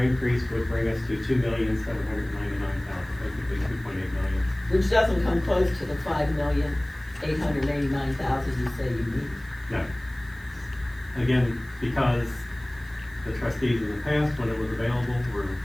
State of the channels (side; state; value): right; noise; hiss, 25 dB below the sound